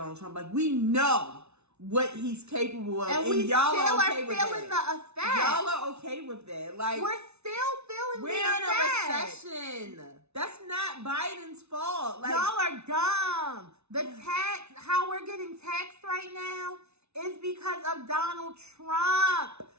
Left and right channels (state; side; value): late; left; 0.81 ms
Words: Trump. Like, we know what he's capable of. And we y'all still are okay are with feeling that. the effects. Y'all are okay with that. Like, we're still feeling the We're effects. in a recession. That's not Biden's fault. Like, y'all are dumb. The tax, how we're getting taxed right now is because of Donald Trump,